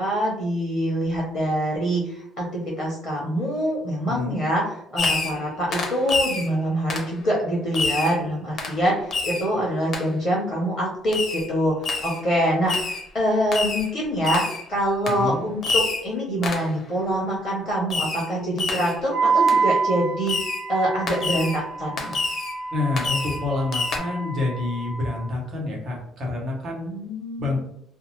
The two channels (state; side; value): normal; both; correlation 0.70